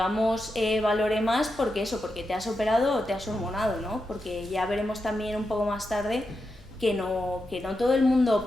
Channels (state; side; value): normal; both; correlation 0.87